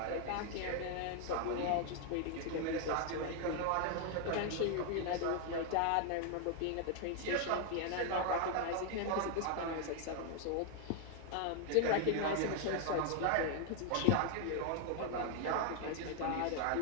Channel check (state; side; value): different; both; correlation 0.00